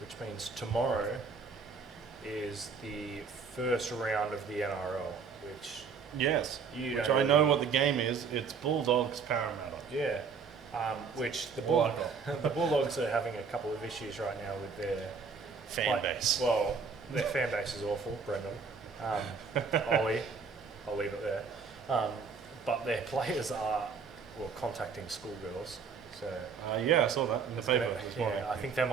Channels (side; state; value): left; quieter; 5.4 dB